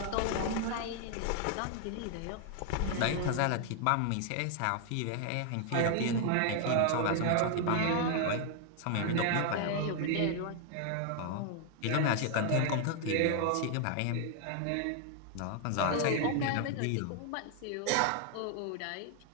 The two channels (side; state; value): both; different; correlation 0.00